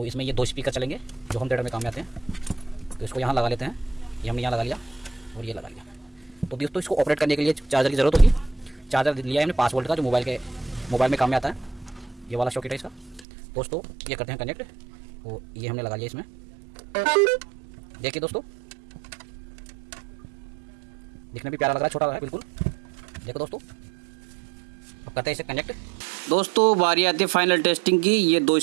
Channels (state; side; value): drops out; left; at 13.2 s